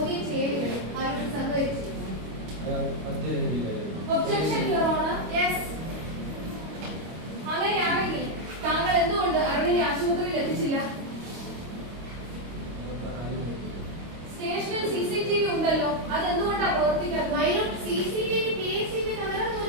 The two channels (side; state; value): left; late; 25 ms